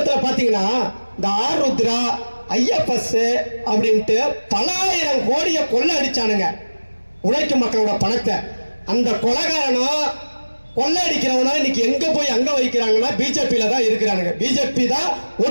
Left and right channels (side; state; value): both; inverted; correlation -1.00